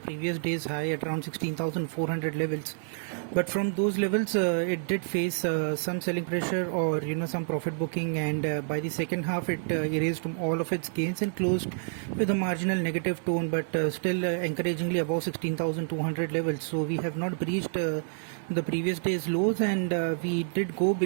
previous day's high at around 16,400 levels. But from those levels, it did face some selling pressure or some profit booking, and by the second half, it erased all of its gains and closed with a marginal negative tone, but still encouragingly above 16,200 levels. So we have not breached the previous day's lows, and we did go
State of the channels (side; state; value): left; silent; 59 dB below the other